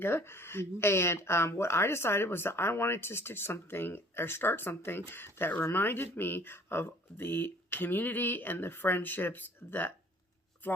And what I decided was that I wanted to stitch something or start something that reminded me of the community and the friendships that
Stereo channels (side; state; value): both; normal; correlation 0.53